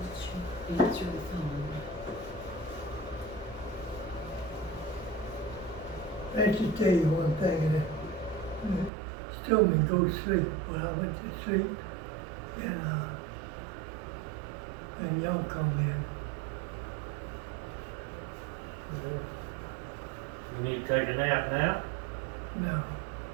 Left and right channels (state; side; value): drops out; left; at 8.9 s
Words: Answer the phone. I just tell you one thing, and she told me go to sleep. Well, I went to sleep, and y'all come in. You need to take a nap now? No,